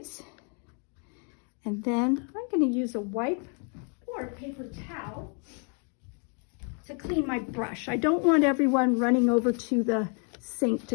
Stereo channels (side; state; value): right; quieter; 39.6 dB